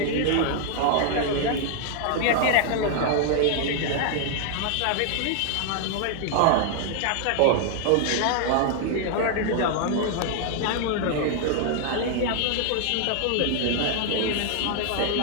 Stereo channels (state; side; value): different; both; correlation 0.00